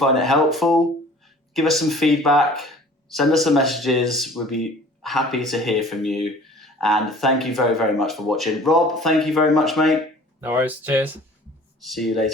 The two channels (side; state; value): both; normal; correlation 0.48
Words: it helpful. Give us some feedback. Send us some messages. We'll be happy to hear from you. And thank you very, very much for watching. Rob, thank you very much, mate. No worries. Cheers. See you